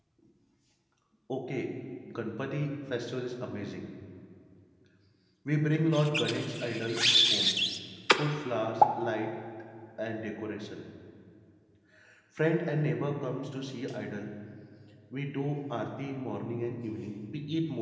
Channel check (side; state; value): both; identical; correlation 1.00